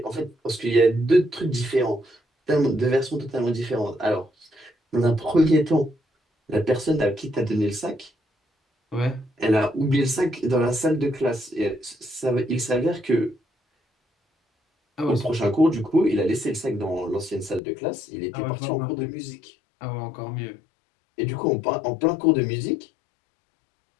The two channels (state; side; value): drops out; right; at 17.6 s